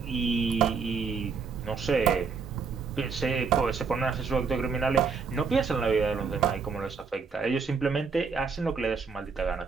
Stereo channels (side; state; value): left; quieter; 5.3 dB